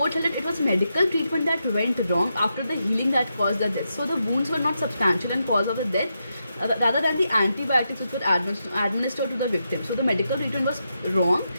held that it was medical treatment that went wrong after the healing that caused the death. So the wounds were not substantial and cause of the death, rather than the antibiotics which were administered to the victim. So the medical treatment was wrong.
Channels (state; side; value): inverted; both; correlation -0.85